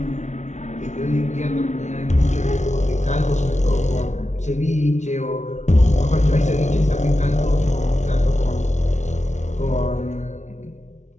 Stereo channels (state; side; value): late; right; 0.34 ms